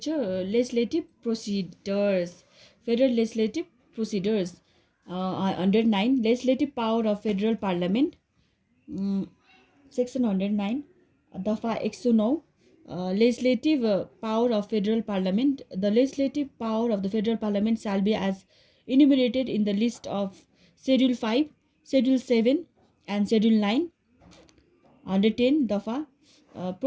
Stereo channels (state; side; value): identical; both; correlation 1.00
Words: Procedures. Federal Legislative Procedures. Under 9 Legislative Power of Federal Parliament. Mm, Section 109 Dafa 109 Legislative Power of Federal Parliament. The legislative power of the Federal Parliament shall be as enumerated in the list of Schedule 5, Schedule 7 and Schedule 9. Under 10 Dafa